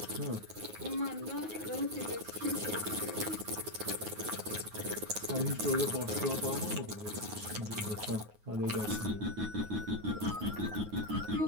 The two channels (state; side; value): late; left; 9.4 ms